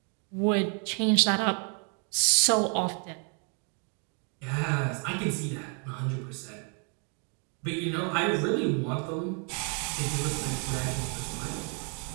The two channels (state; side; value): quieter; left; 38.9 dB